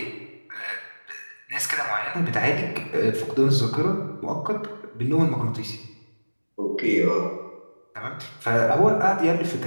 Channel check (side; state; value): both; inverted; correlation -1.00